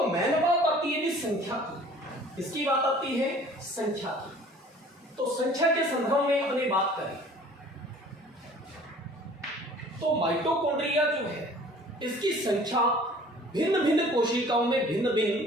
मेन बात आती है संख्या की। इसकी बात आती है संख्या की। तो संख्या के संदर्भ में अपनी बात करें तो माइटोकॉन्ड्रिया जो है इसकी संख्या भिन्न भिन्न कोशिकाओं में भिन्न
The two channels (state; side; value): normal; both; correlation 0.50